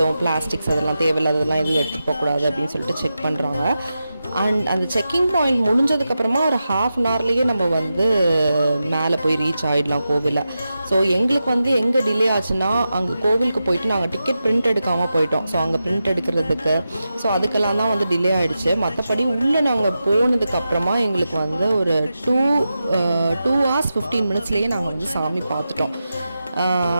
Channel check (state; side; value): inverted; both; correlation -0.91